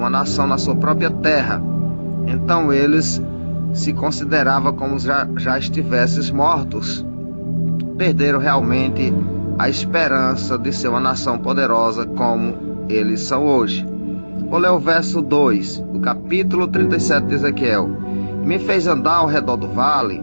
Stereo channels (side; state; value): both; inverted; correlation -1.00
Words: nação na sua própria terra. Então eles se consideravam como já estivessem mortos. Perderam realmente a esperança de ser uma nação poderosa como eles são hoje. Vou ler o verso 2 do capítulo 37 de Ezequiel. Me fez andar ao redor do vale,